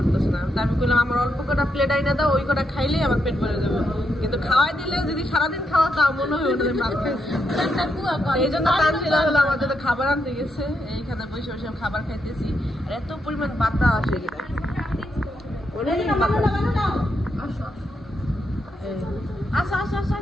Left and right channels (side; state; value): both; normal; correlation 0.81